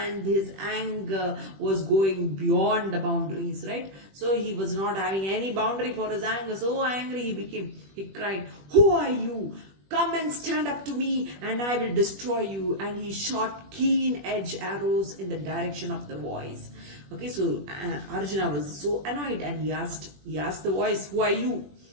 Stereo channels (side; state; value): left; late; 21 ms